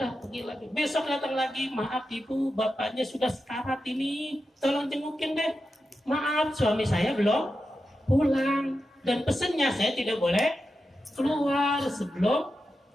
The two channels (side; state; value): both; normal; correlation 0.90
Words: pergi lagi. Besok datang lagi, maaf ibu, bapaknya sudah sekarat ini, tolong jengukin deh. Maaf, suami saya belum pulang. Dan pesannya saya tidak boleh keluar sebelum